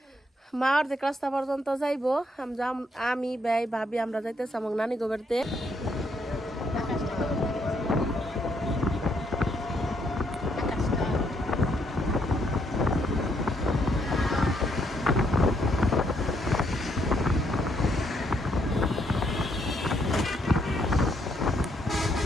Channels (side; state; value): both; normal; correlation 0.73